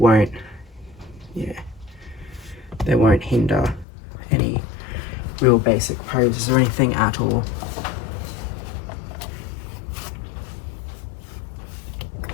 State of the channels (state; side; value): drops out; right; at 3.9 s